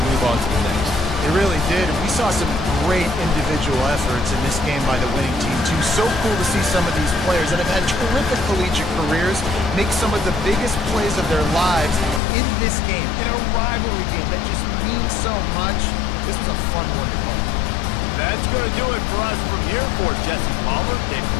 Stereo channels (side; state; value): right; drops out; at 12.2 s